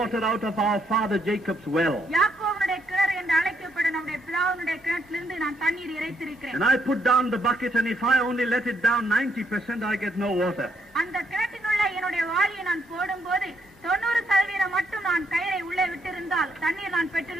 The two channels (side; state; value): both; normal; correlation 0.74